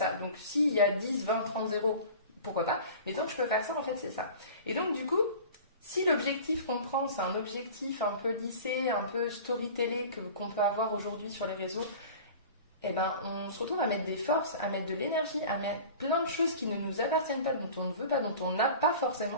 Donc, s'il y a 10, 20, 30 zéros, pourquoi pas? Mais tant que je peux faire ça, en fait, c'est ça. Et donc, du coup, si l'objectif qu'on prend, c'est un objectif un peu lissé, un peu storytellé qu'on peut avoir aujourd'hui sur les réseaux, on se retrouve à mettre des forces, à mettre de l'énergie, à mettre plein de choses qui ne nous appartiennent pas, dont on ne veut pas, dont on n'a pas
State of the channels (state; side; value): inverted; both; correlation -0.40